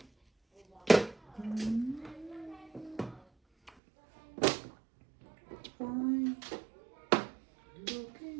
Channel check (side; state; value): left; drops out; at 3.7 s